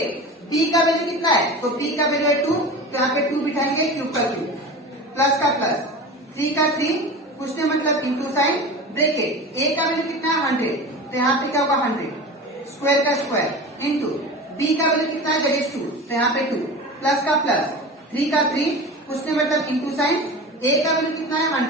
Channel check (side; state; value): both; normal; correlation 0.32